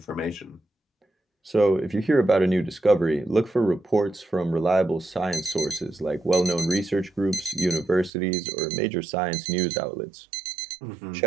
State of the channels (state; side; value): drops out; left; at 8.1 s